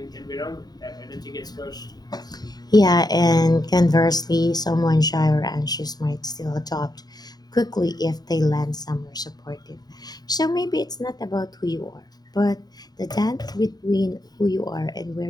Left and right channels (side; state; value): right; late; 0.19 ms